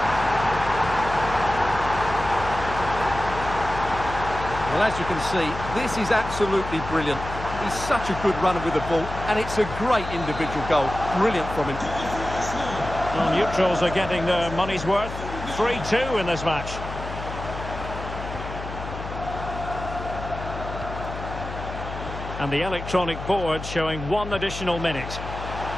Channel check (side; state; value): left; noise; hum, 9 dB below the sound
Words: Well, as you can see, this is absolutely brilliant. He's such a good runner with the ball, and it's a great individual goal. Brilliant from him. Well, neutrals are getting their money's worth. 3-2 in this match. And the electronic board showing 1 additional minute.